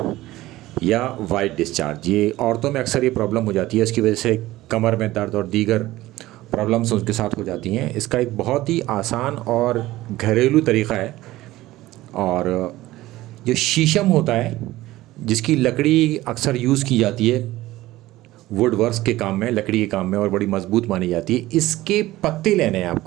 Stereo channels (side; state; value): left; quieter; 16.9 dB